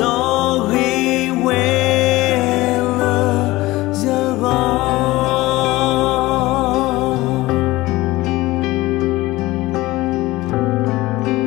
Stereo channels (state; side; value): quieter; right; 19.1 dB